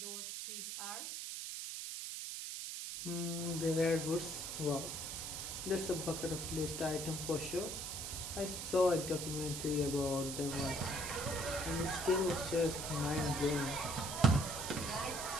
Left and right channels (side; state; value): right; noise; hiss, 5 dB below the sound